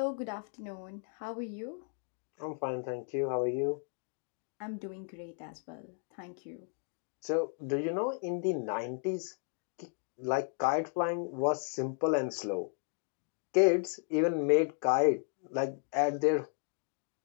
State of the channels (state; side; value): silent; right; 55 dB below the other